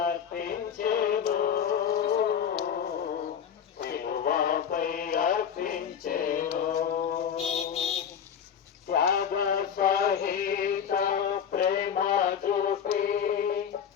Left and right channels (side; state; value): right; quieter; 8.1 dB